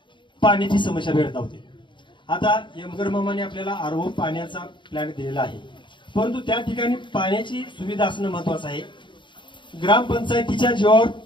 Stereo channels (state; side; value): late; right; 0.23 ms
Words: पाण्याची समस्या भेडसावते. आता यमगर मामाने आपल्याला आरओ पाण्याचा प्लॅन दिलेला आहे, परंतु त्या ठिकाणी पाण्याची सुविधा असणं महत्वाचं आहे. ग्रामपंचायतीच्या जीवावर